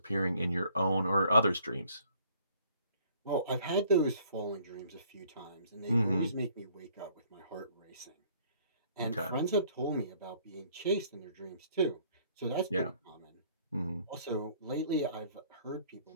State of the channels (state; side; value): inverted; both; correlation -0.60